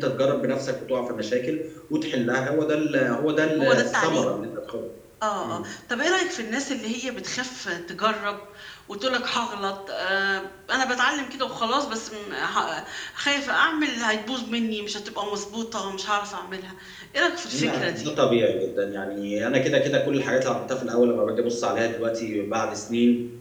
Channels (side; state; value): both; identical; correlation 1.00